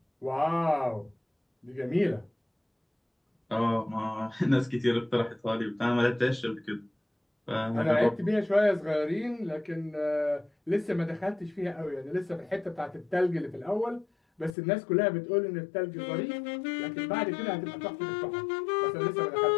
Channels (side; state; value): right; drops out; at 14.5 s